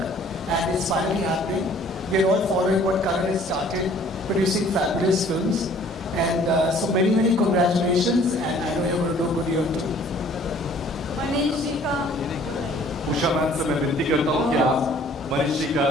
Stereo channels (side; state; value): both; normal; correlation 0.55